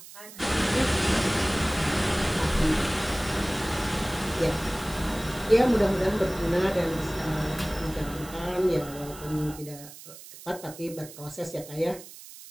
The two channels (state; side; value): noise; right; hiss, 16 dB below the sound